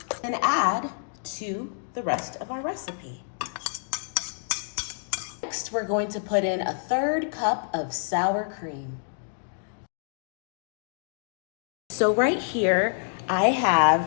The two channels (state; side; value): silent; right; digital silence